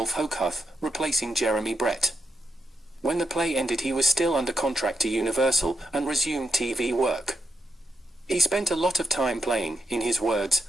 Hochhuth, replacing Jeremy Brett. When the play ended, he was still under contract to Universal and resumed TV work. He spent a lot of time playing, in his words,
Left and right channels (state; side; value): normal; both; correlation 0.84